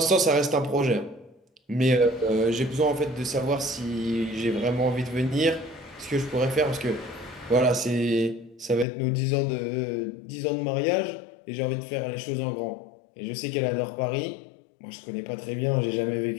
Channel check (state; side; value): drops out; right; at 8.8 s